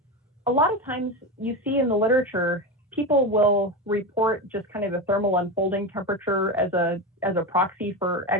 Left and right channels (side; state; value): both; normal; correlation 0.19